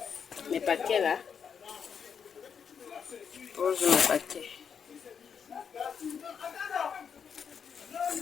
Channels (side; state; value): right; quieter; 7.0 dB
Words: mes paquets là. Pose mes paquets.